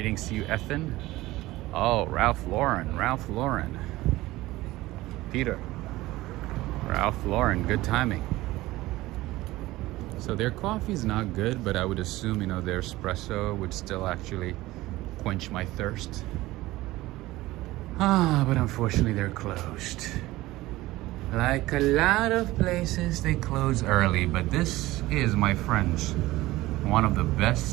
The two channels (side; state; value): left; quieter; 18.0 dB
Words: to you, Ethan. Oh, Ralph Lauren. Peter. Ralph Lauren, good timing. So their coffee's not good, but I would assume, you know, their espresso would still actually quench my thirst. But unfortunately they're closed. Like a lot of places, they close early, but this is, my friends, one of the